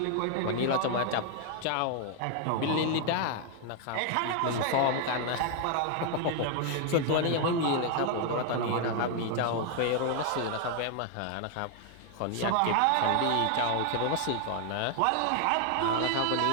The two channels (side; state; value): both; different; correlation 0.00